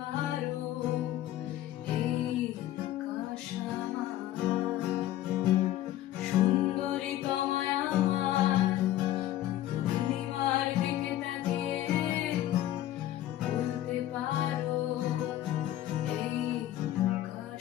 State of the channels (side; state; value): right; quieter; 13.5 dB